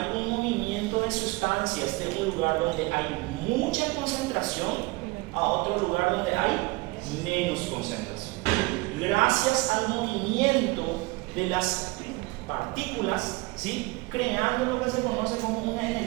un movimiento de sustancias de un lugar donde hay mucha concentración a otro lugar donde hay menos concentración. Gracias al movimiento de las partículas ¿sí? Creando lo que se conoce como una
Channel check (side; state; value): left; quieter; 23.5 dB